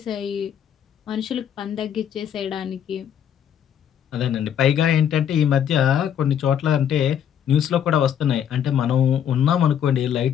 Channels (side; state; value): right; quieter; 9.1 dB